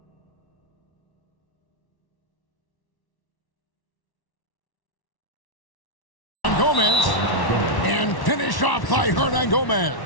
Gomez. And finished off by Hernangomez.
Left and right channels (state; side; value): late; right; 1.1 ms